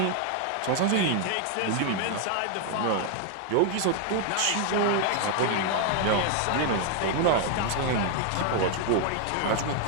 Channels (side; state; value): both; different; correlation 0.00